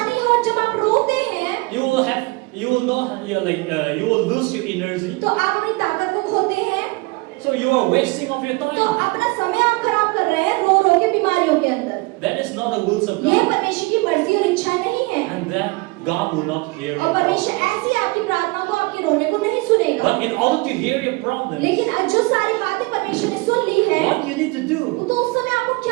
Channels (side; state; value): left; quieter; 25.2 dB